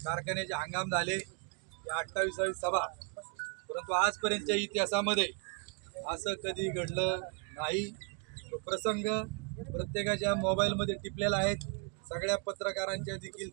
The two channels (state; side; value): quieter; left; 36.1 dB